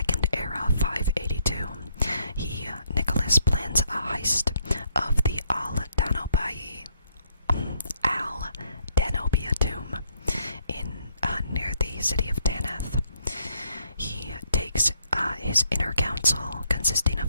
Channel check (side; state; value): both; inverted; correlation -0.70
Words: Era 582, Nicholas plans a heist of the Al-Danobia tomb in near the city of Tanith. He takes his inner council, consisting